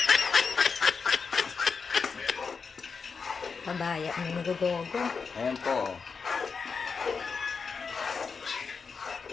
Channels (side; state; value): right; quieter; 5.3 dB